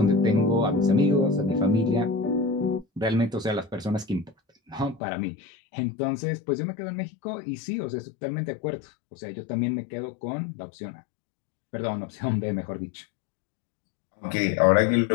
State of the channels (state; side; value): drops out; right; at 5.0 s